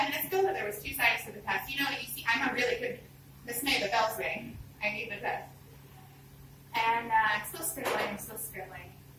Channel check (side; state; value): both; identical; correlation 1.00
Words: minutes ago that there was 2 sides to the test. You see, I'm a really good Miss May, the bell's rang. I need the test. And I'm still scribbling.